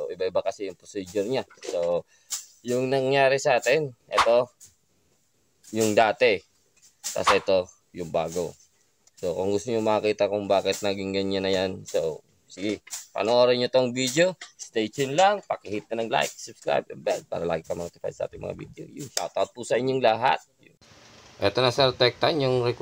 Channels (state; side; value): identical; both; correlation 1.00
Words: iba-iba kasi yung procedure niya. So, yung nangyari sa atin, ito, yung dati. Tapos ito, yung bago. So, kung gusto nyo makita kung bakit naging ganyan na yan, so, sige, panoorin nyo tong video. Stay tuned lang. Pakihit na ng like, subscribe, and bell para lagi ka notify sa ating mga video. Yun, shoutout po sa inyong lahat. Ito na Sir Tektan, yung